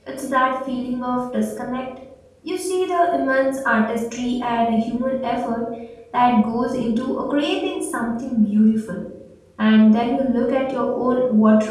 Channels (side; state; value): both; identical; correlation 1.00